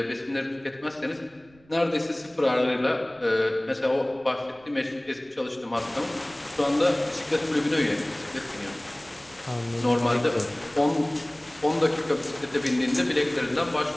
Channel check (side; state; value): right; noise; rumble, 29 dB below the sound